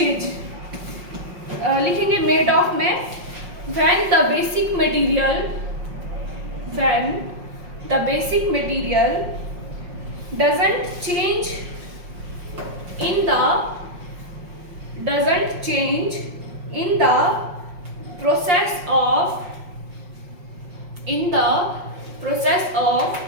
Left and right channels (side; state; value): left; late; 5.6 ms